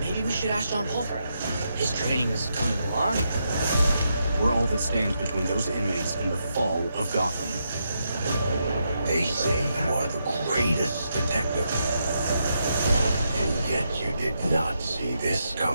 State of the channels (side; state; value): both; inverted; correlation -0.82